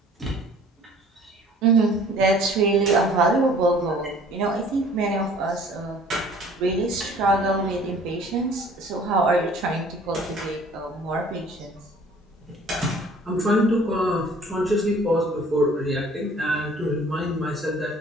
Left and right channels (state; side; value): normal; both; correlation 0.52